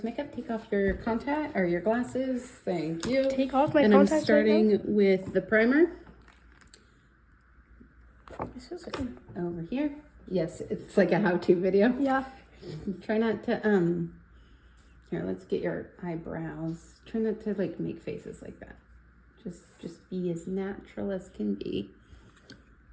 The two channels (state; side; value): identical; both; correlation 1.00